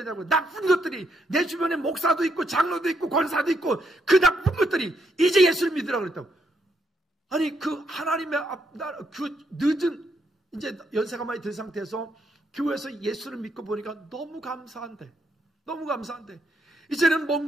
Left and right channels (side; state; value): both; normal; correlation 0.76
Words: 나쁜 것들이 내 주변에 목사도 있고 장로도 있고 권사도 있고 그 나쁜 것들이 이제 예수를 믿으라 그랬다고. 아니 그 하나님의 그 늦은 이제 연세가 많이 든 상태에서 교회에서 예수를 믿고 보니까 너무 감사한데 이제는